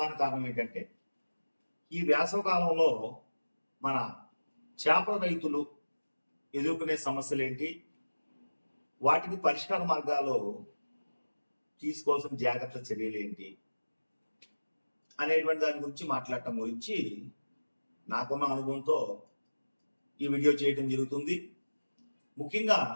కారణం ఏంటంటే, ఈ వేసవ కాలంలో మన చేపల రైతులు ఎదుర్కొనే సమస్యలు ఏంటి, వాటికి పరిష్కార మార్గాలు తీసుకోవాల్సిన జాగ్రత్త చర్యలు ఏంటి అనేటువంటి దాని గురించి మాట్లాడటం గురించి నాకున్న అనుభవంతో ఈ వీడియో చేయడం జరుగుతుంది. ముఖ్యంగా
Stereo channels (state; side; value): inverted; both; correlation -1.00